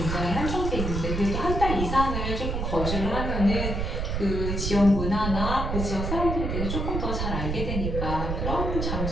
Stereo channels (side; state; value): right; noise; rumble, 2 dB below the sound